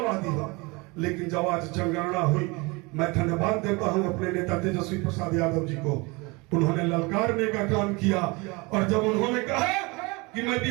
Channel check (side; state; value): left; quieter; 26.2 dB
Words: हो, लेकिन जब आज जनगणना हुई, मैं धन्यवाद देता हूं अपने नेता तेजस्वी प्रसाद यादव जी को। उन्होंने ललकारने का काम किया और जब उन्होंने कहा कि मैं